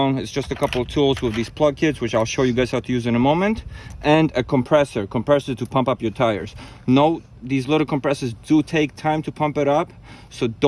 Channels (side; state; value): both; identical; correlation 1.00